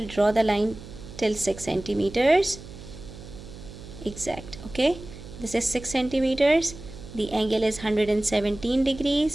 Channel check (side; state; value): right; noise; hum, 15 dB below the sound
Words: draw the line till 6 centimeters. Exact. Okay, this is 6 centimeters. The angle is 117